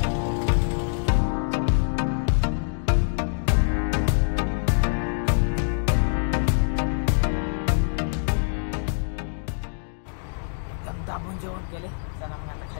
एकदम दाबून जेवण केले. चला मग आता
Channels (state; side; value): silent; right; digital silence